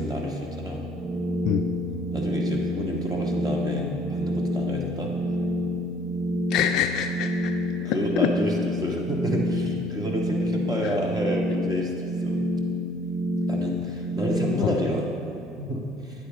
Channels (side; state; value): both; normal; correlation 0.59